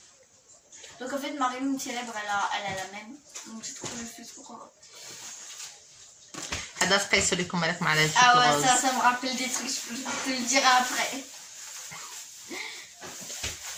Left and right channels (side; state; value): both; identical; correlation 1.00